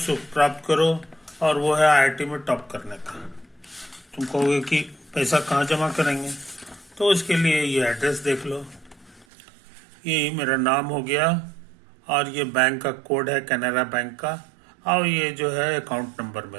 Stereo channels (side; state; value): left; drops out; at 9.2 s